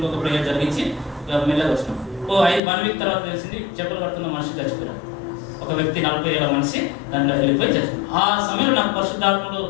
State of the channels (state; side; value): drops out; right; at 2.6 s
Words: ప్రేయర్ జరిగించి మెల్లగా వచ్చినాం. 1 week తర్వాత తెలిసింది చెప్పులు కడుతున్న మనిషి చచ్చిపోయారు. ఒక వ్యక్తి 40 ఏళ్ల మనిషి దాంట్లో వెళ్ళిపోయి చచ్చిపోయారు. ఆ సమయంలో నాకు పరిశుద్ధాత్మలు